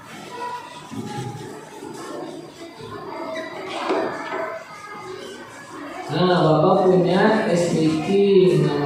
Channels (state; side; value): identical; both; correlation 1.00